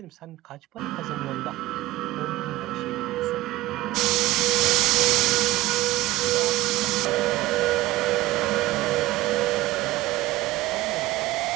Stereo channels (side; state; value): left; quieter; 17.6 dB